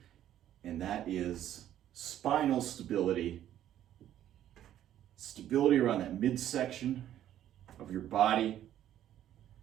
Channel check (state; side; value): quieter; left; 11.6 dB